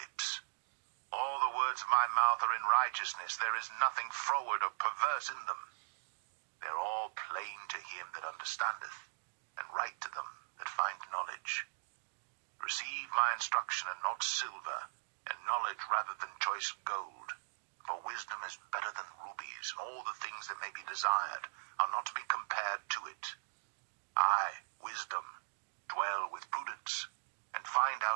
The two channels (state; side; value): silent; left; digital silence